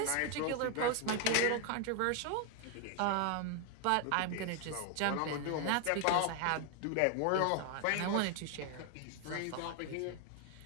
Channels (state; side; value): different; both; correlation 0.00